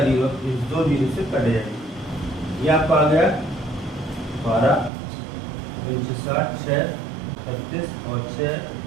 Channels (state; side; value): drops out; left; at 4.9 s